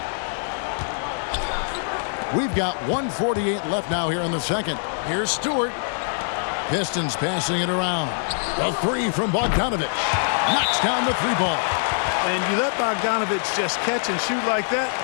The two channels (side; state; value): right; silent; digital silence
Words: We've got 1:48 left now here in the second. Here's Stewart. Pistons passing it around. A 3 from Bogdanovich. Knocks down the 3-ball. And you let Bogdanovich just catch and shoot like that,